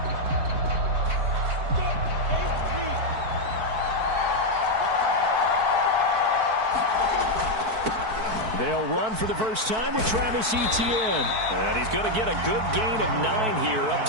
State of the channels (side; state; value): left; late; 4.6 ms